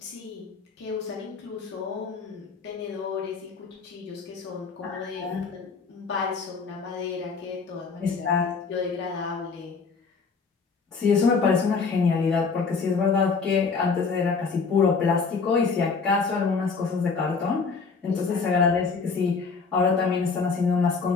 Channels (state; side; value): quieter; right; 4.9 dB